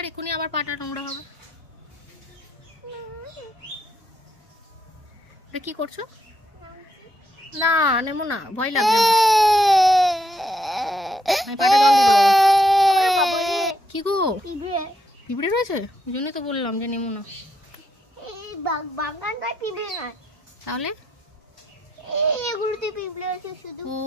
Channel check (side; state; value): both; normal; correlation 0.77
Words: এখনই আবার পাটা নোংরা হবে। কি করছো? না নেমো না, ভয় লাগবে। কি গো, পিঁপড়ে রয়েছে? ওই জন্যই তো বললাম যে নেমো না। তাহলে ও